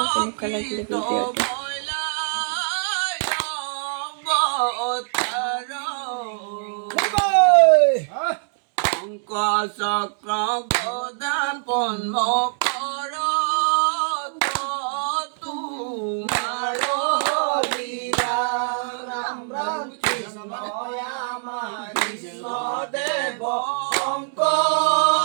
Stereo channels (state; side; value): silent; left; digital silence